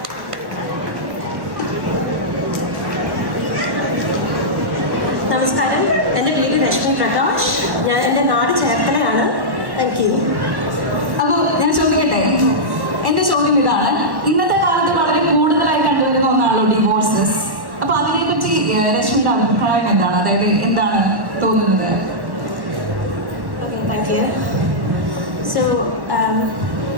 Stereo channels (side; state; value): left; late; 1.1 ms